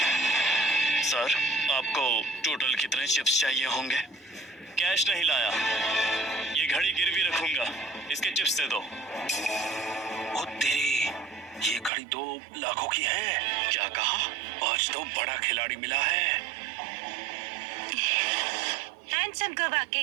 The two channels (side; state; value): left; drops out; at 11.9 s